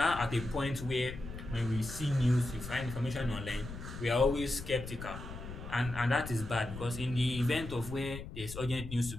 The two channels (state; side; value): noise; left; rumble, 10 dB below the sound